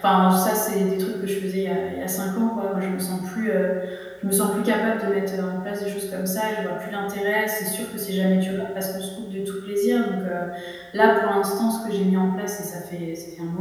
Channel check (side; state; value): both; identical; correlation 1.00